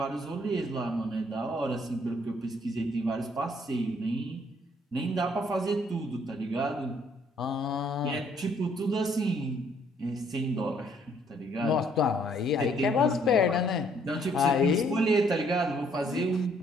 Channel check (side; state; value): both; normal; correlation 0.65